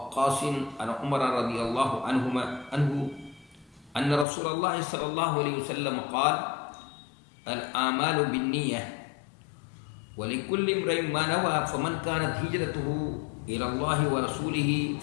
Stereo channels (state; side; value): drops out; right; at 4.2 s